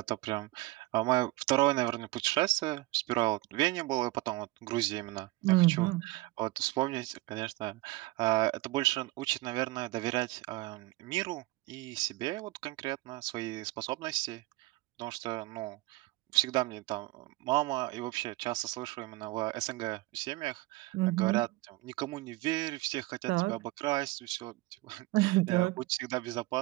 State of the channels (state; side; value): quieter; left; 20.4 dB